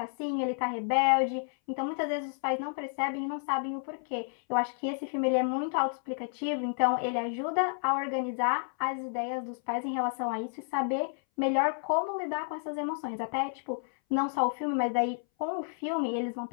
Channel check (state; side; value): silent; right; 57 dB below the other